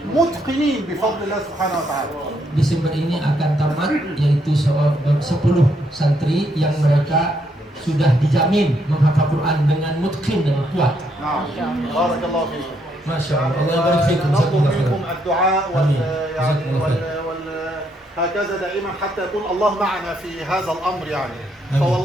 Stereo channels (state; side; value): normal; both; correlation 0.75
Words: متقنين بفضل الله سبحانه وتعالى. Desember ini akan tamat, yaitu 10 santri yang mereka sudah dijamin menghafal Quran dengan mutqin dan kuat. بارك الله فيكم. Masya Allah. Allah barik fikum. نطلب منكم الدعاء هكذا دائما حتى يكون الله معنا في هذا الأمر يعني.